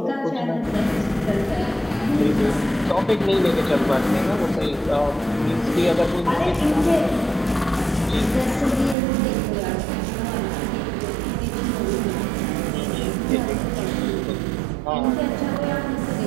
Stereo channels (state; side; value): drops out; left; at 9.0 s